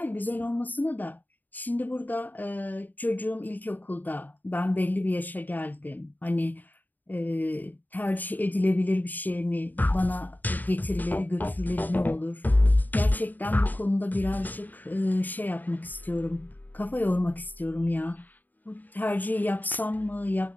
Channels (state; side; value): late; right; 0.085 ms